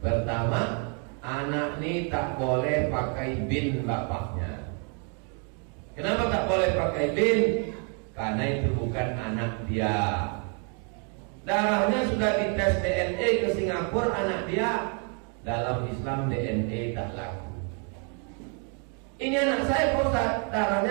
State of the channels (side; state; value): left; quieter; 39.6 dB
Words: anak ini tak boleh pakai bin bapaknya. Kenapa tak boleh pakai bin? Karena itu bukan anak dia. Darahnya sudah dites DNA ke Singapura, anak dia. Dalam Islam DNA tak laku. Ini anak saya Pak Ustaz,